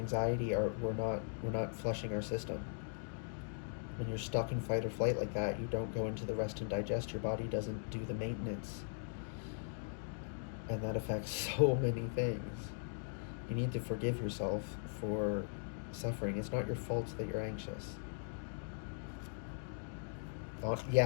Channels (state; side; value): silent; right; digital silence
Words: we're not flushing our system. When you're stuck in fight or flight like that, you don't go into the rest and digest. Your body doesn't do the maintenance. And that affects so many things. You need to forgive yourself for suffering. It's not your fault that you're anxious.